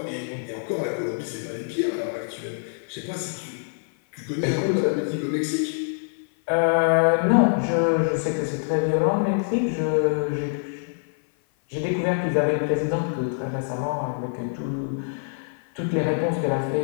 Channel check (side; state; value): right; silent; 57 dB below the other